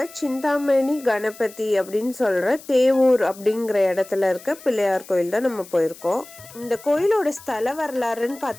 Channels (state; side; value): noise; left; hiss, 19 dB below the sound